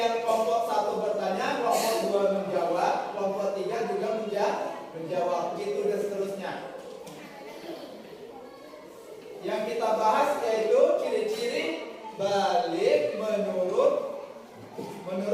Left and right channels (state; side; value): identical; both; correlation 1.00